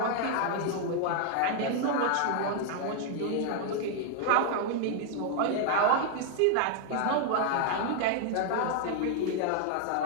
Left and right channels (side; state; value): both; different; correlation 0.00